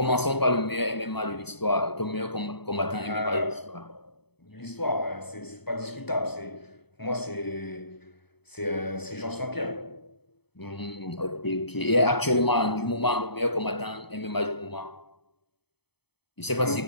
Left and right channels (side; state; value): right; late; 0.98 ms